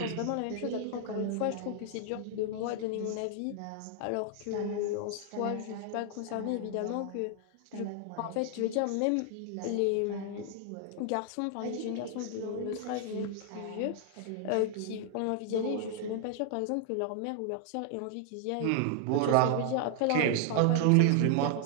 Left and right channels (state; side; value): different; both; correlation 0.00